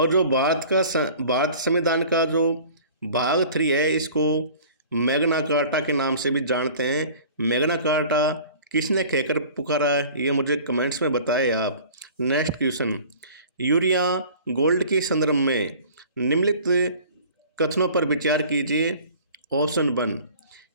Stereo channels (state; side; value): inverted; both; correlation -0.45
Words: जो भारत संविधान का जो भाग 3 है इसको मैग्ना कार्टा के नाम से भी जानते हैं। मैग्ना कार्टा किसने कहकर पुकारा है ये मुझे कमेंट्स में बताएं आप। Next question. यूरिया गोल्ड के संदर्भ में निम्नलिखित कथनों पर विचार कीजिए। ऑप्शन 1